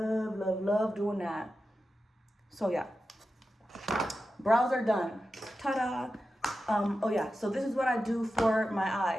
doing that. So yeah, brows are done. Ta-da! Oh yeah, so this is what I do for my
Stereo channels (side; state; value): both; normal; correlation 0.92